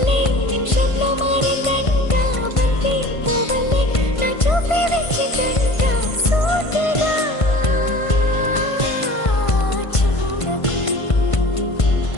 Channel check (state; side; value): late; right; 1.5 ms